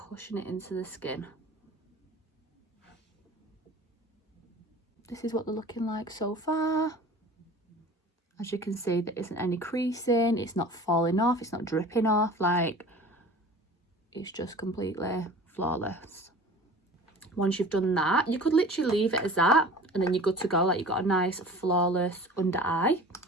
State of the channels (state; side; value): normal; both; correlation 0.41